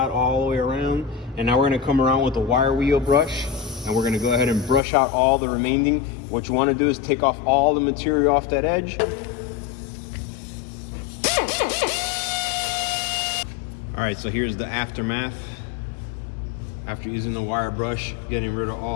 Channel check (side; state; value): right; drops out; at 4.8 s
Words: all the way around. And now we're gonna come around with a wire wheel brush and we're gonna go ahead and brush out all the remaining. What you wanna do is take off all the material off that edge. All right, so here's the aftermath. After using the wire brush, getting rid of